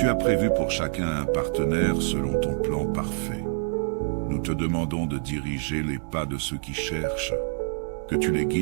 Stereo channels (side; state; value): left; silent; digital silence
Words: as prévu pour chacun un partenaire selon ton plan parfait. Nous te demandons de diriger les pas de ceux qui cherchent, que tu les